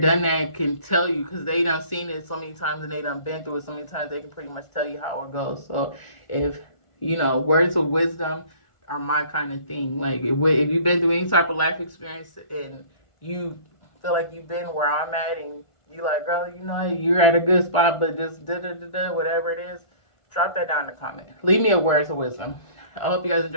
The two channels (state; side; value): late; right; 1.5 ms